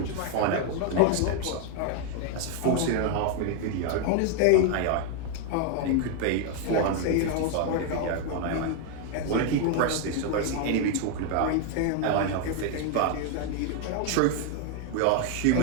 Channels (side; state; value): both; different; correlation 0.01